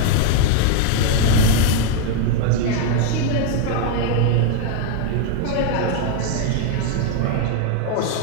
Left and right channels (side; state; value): both; different; correlation 0.00